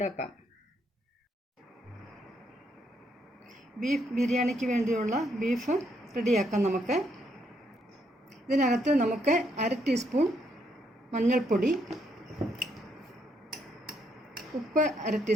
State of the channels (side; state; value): both; normal; correlation 0.74